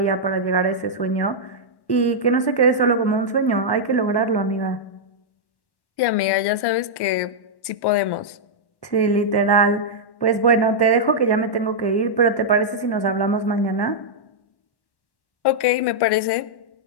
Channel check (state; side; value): late; right; 1.1 ms